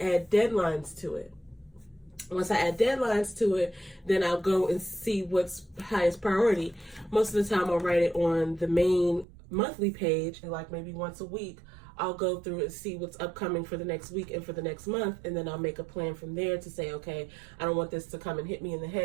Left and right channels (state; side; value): drops out; left; at 9.2 s